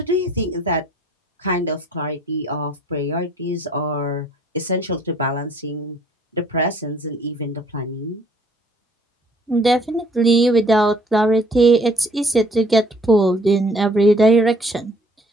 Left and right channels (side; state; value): both; normal; correlation 0.59